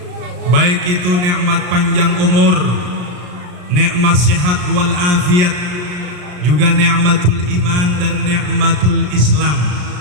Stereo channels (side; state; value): left; late; 34 ms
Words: baik itu nikmat panjang umur, nikmat sehat wal afiat, juga nikmatul iman dan nikmatul Islam.